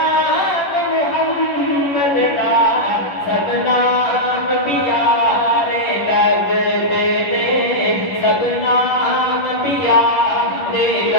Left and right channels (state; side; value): late; right; 11 ms